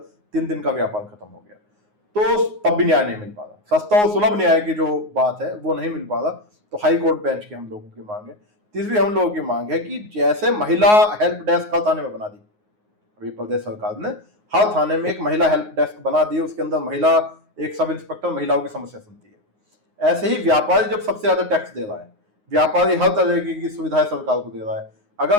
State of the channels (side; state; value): left; late; 9.5 ms